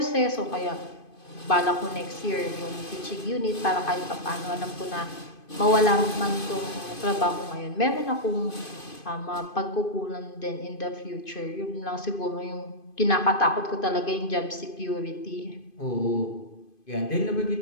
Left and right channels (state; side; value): late; right; 2.5 ms